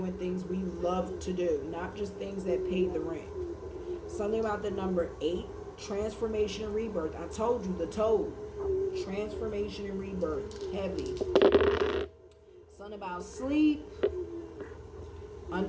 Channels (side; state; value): both; identical; correlation 1.00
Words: things we love to do, not just things that pay the rent. Something about the number 8, transformation and rebirth. I told you, the toad. Transformation and rebirth. Heavy. Something about sleep.